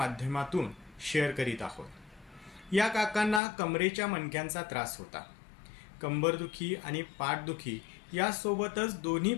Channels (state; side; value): drops out; right; at 3.4 s